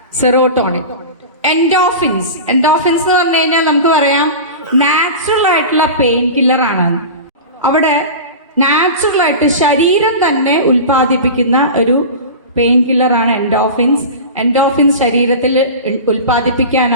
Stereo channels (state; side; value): inverted; both; correlation -0.30